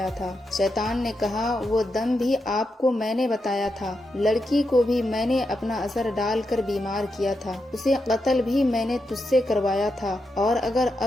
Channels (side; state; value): both; normal; correlation 0.86